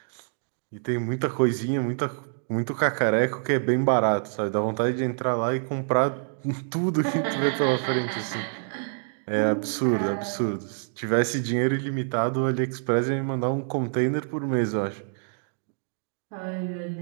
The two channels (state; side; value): silent; left; digital silence